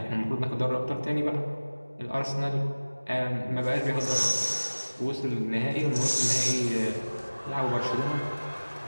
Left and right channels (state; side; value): inverted; both; correlation -1.00